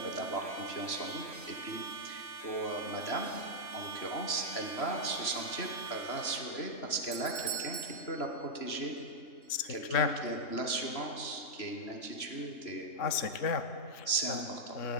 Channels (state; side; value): late; right; 3.0 ms